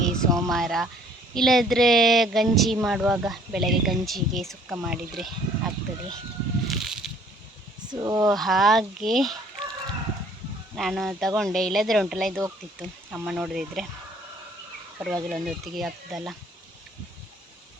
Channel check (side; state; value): both; normal; correlation 0.58